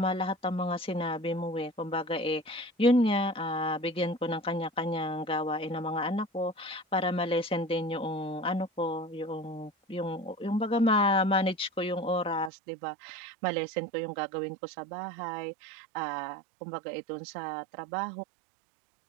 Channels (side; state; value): left; drops out; at 12.5 s